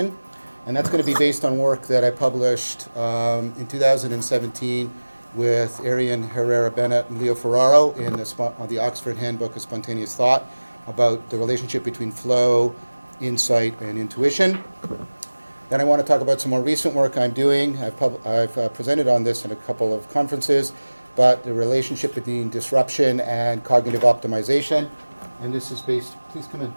And that's going to be based on work that I published in 2017 with Arian Herrera-Bennett and Leo Ferraro in the Oxford Handbook of Spontaneous Thought about the relationship between flow, insight, and intuition. Then I want to talk about some more recent work I'm doing. I've presented on this in a couple of conferences, but the relationship between disruption and cognitive optimization. And this is based, please come in.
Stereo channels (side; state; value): both; inverted; correlation -1.00